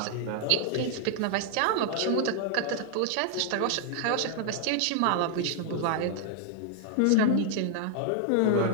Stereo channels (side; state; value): both; different; correlation 0.00